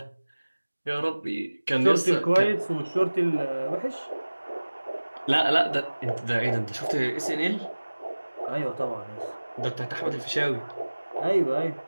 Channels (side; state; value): both; inverted; correlation -1.00